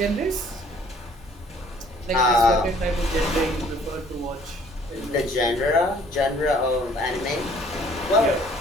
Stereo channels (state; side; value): normal; both; correlation 0.57